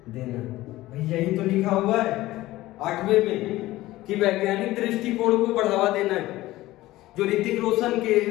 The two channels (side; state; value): right; quieter; 17.1 dB